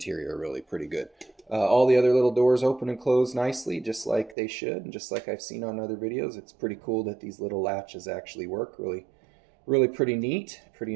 really pretty good. All the other little doors open and close nicely, just like they should, and just like I've seen on other videos. It's pretty cool that these little latches actually work. Really, really pretty neat. Pretty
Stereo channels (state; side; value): drops out; left; at 4.4 s